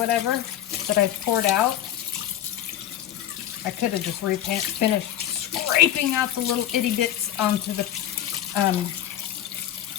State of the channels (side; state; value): right; quieter; 11.6 dB